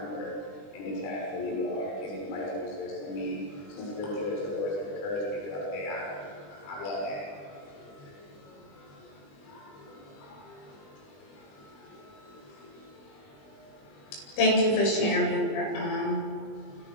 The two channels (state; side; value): late; right; 20 ms